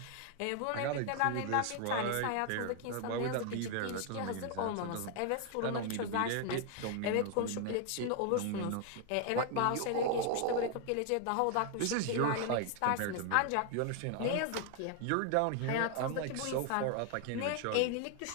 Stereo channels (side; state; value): both; different; correlation 0.00